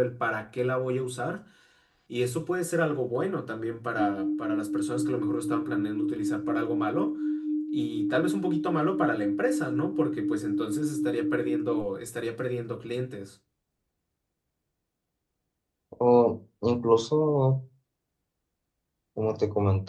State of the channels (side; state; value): both; identical; correlation 1.00